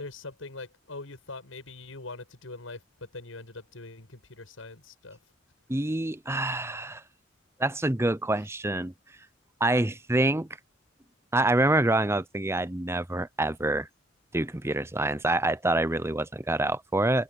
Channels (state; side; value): normal; both; correlation 0.66